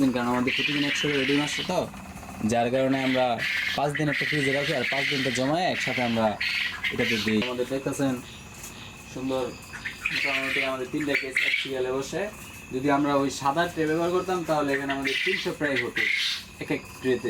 দিন, কারণ আমাদের প্রতিদিন 100 করে ডিম আসছে, তো যার কারণে আমরা 5 দিন একটা ফ্রিজে রাখি, আর 5 দিনটা জমায় একসাথে আমরা এটাতে দিই। আমাদের দেখতেছেন সুন্দর মোটামুটি আমাদের 3টা কেস এক সিরিয়ালে বসে। যদি আমরা ওই সাদা ট্রে ব্যবহার করতাম তাহলে এখানে আমাদের 300 প্রায় হতো এক এক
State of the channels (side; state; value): both; identical; correlation 1.00